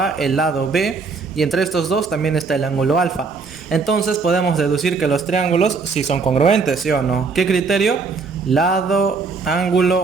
el lado B, y entre estos dos también está el ángulo alfa. Entonces podemos deducir que los triángulos sí son congruentes, ¿sí o no? ¿Qué criterio? Lado,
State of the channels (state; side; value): quieter; left; 4.6 dB